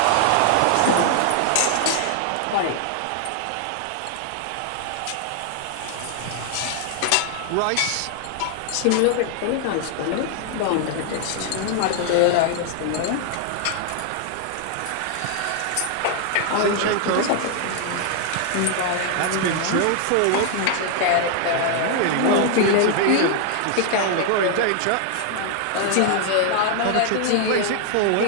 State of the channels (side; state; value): both; different; correlation 0.00